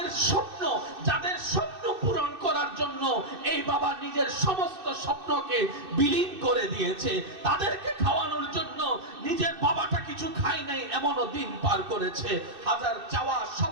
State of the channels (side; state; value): left; late; 2.6 ms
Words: স্বপ্ন পূরণ করার জন্য এই বাবা নিজের সমস্ত স্বপ্নকে বিলীন করে দিয়েছে। তাদেরকে খাওয়ানোর জন্য নিজের বাবাটা কিছু খায় নাই এমনও দিন পার করেছে। হাজার চাওয়া